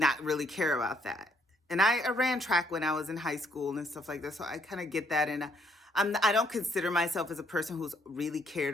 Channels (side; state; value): both; normal; correlation 0.69